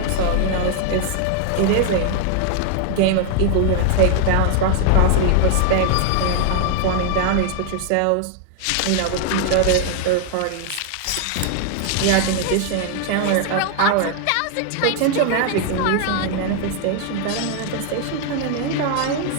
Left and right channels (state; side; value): different; both; correlation 0.00